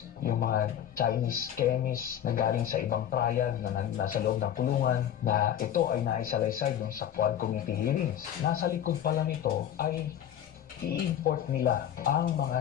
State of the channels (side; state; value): right; quieter; 10.3 dB